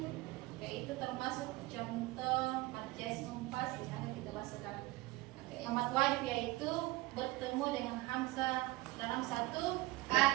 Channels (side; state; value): left; quieter; 20.4 dB